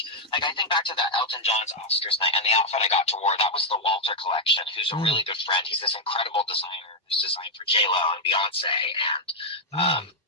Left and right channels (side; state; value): both; normal; correlation -0.01